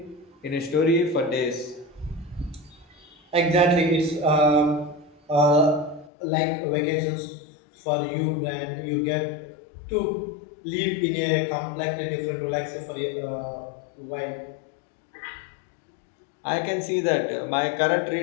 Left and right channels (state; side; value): drops out; right; at 6.1 s